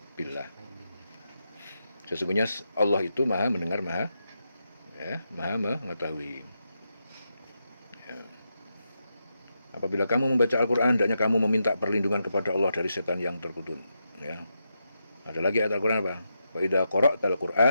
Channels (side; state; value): both; inverted; correlation -0.85